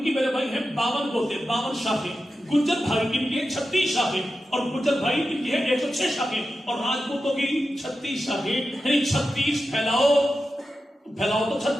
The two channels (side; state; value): both; normal; correlation 0.91